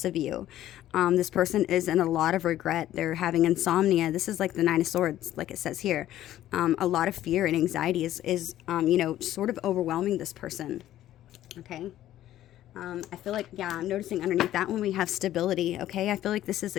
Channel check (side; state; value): right; quieter; 13.1 dB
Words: of you. This person is in a lot of regret. They're having insomnia. This is like the Nine of Swords, like it says here. A lot of fear and anxiety is sort of overwhelming this person, okay? I feel like, I'm noticing underneath that one we have stability, okay? I feel like this is